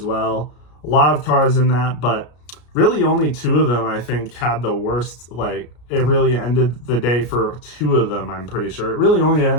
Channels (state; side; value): late; right; 33 ms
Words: well. A lot of cars in that, but really only 2 of them, I think, had the worst. Like, it really ended the day for 2 of them, I'm pretty sure. It really only